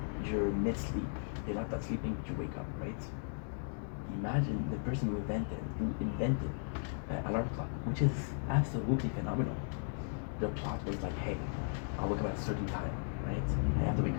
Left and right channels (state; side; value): silent; right; digital silence